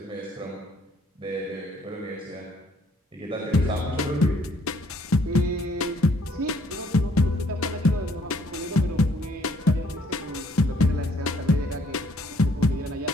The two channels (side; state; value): both; normal; correlation 0.64